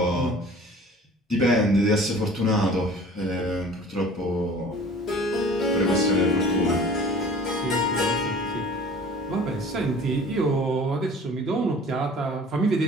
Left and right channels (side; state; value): both; normal; correlation 0.46